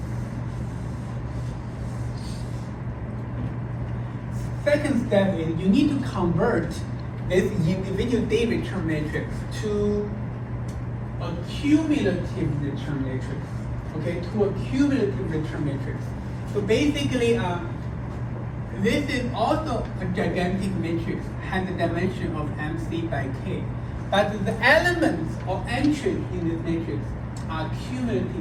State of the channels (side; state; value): both; identical; correlation 1.00